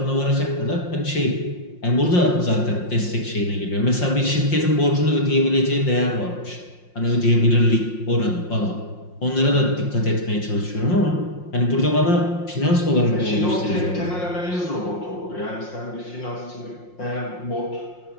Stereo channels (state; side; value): late; right; 5.6 ms